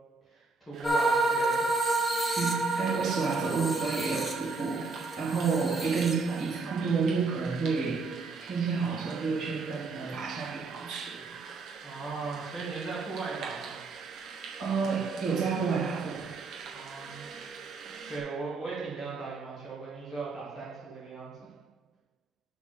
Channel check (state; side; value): quieter; left; 3.9 dB